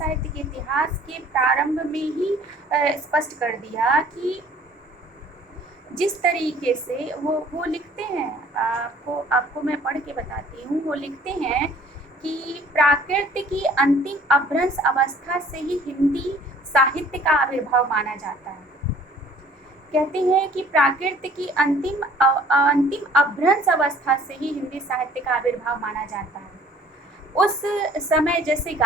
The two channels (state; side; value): normal; both; correlation 0.54